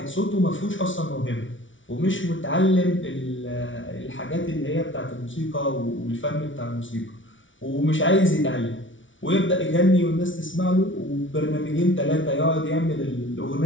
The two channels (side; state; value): right; late; 0.56 ms